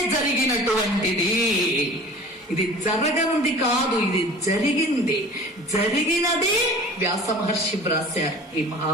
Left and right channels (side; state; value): both; normal; correlation 0.42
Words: జరిగినటువంటిది. ఇది జరగంది కాదు, ఇది జరిగింది. జరిగినదే వ్యాస మహర్షి వ్రాశారు ఈ